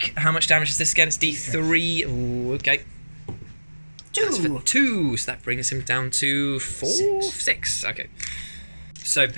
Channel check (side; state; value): both; inverted; correlation -1.00